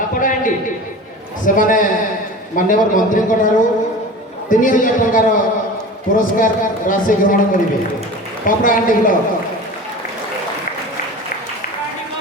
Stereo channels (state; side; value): normal; both; correlation 0.35